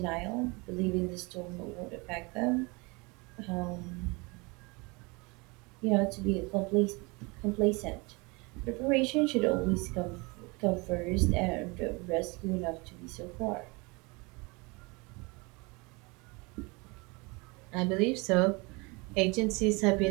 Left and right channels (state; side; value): quieter; left; 27.5 dB